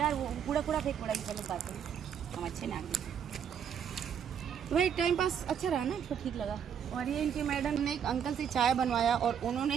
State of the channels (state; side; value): quieter; left; 8.1 dB